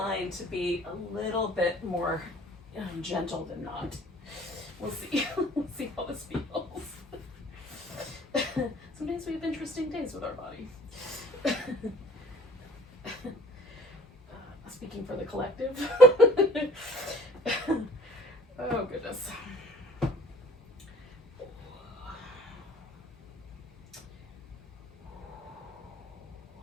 to be a little bit more gentle than not. We'll see. We'll see how this feels. Sometimes we have interesting days with our body. Speaking for the collective. Oh, goodness.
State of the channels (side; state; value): both; normal; correlation 0.51